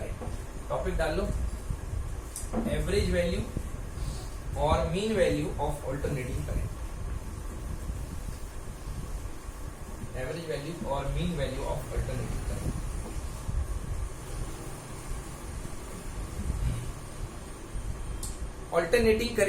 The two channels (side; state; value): both; identical; correlation 1.00